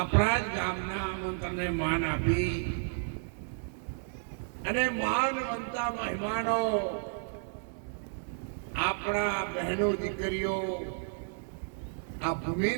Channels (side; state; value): left; silent; 56 dB below the other